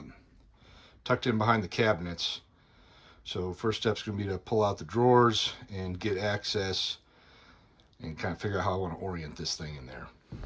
tucked in behind the cabinets. So first step's going to be to pull out the drawers and get access and kind of figure out how I want to orient this thing in there.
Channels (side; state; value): both; identical; correlation 1.00